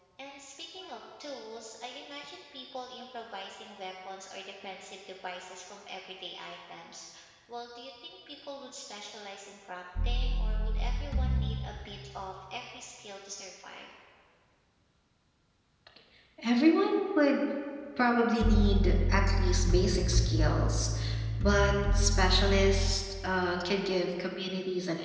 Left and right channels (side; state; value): both; identical; correlation 1.00